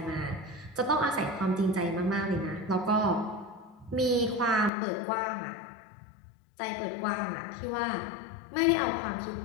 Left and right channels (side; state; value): right; drops out; at 4.7 s